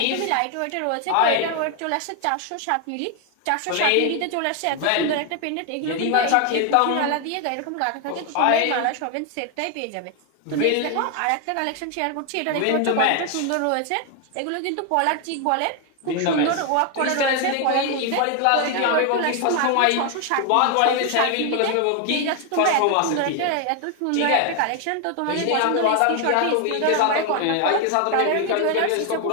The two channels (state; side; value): different; both; correlation 0.01